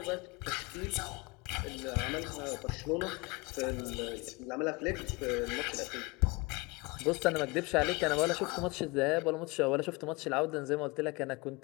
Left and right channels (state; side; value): quieter; right; 25.9 dB